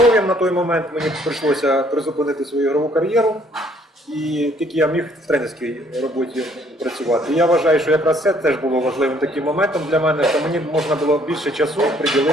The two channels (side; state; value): both; normal; correlation 0.63